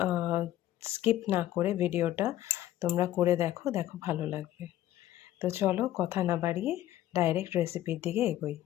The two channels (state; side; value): quieter; right; 13.5 dB